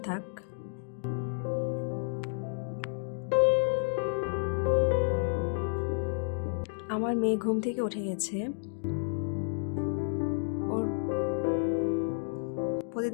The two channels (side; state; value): right; silent; digital silence